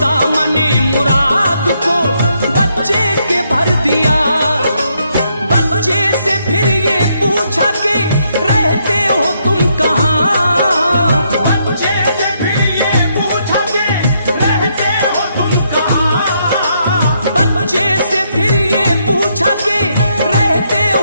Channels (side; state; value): both; inverted; correlation -0.75